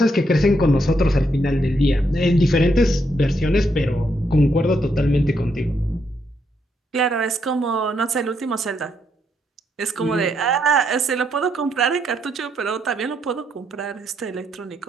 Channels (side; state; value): both; normal; correlation 0.77